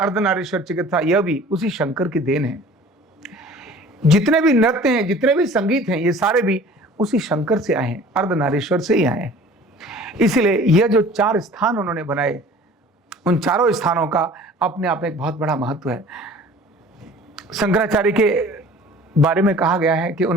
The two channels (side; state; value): both; normal; correlation 0.47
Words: चिकित्सा, यह भी उसी शंकर की देन है। जितने भी नृत्य हैं, जितने भी संगीत हैं, ये सारे भी उसी शंकर से आए हैं, अर्धनारीश्वर से ही आए हैं। इसलिए यह जो 4 स्थान उन्होंने बनाए, उन चारों स्थानों का अपने आप में एक बहुत बड़ा महत्व है। शंकराचार्य के बारे में कहा गया है कि